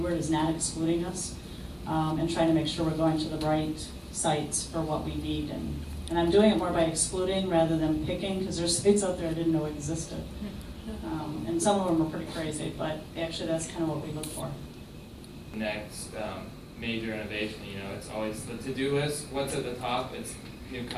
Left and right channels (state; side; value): identical; both; correlation 1.00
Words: is not excluding us, and trying to make sure we're going to the right sites for what we need. And I'm doing it more by excluding rather than picking, because there's sites out there I didn't know existed. And some of them are pretty crazy, but actually that's kind of what we look for. Next major innovation, it's always the to-do list. What's at the top? It's new